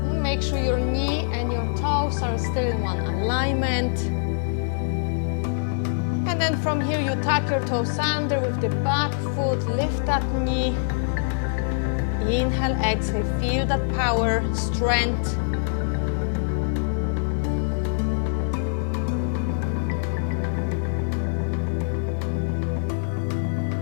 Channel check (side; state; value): right; silent; 62 dB below the other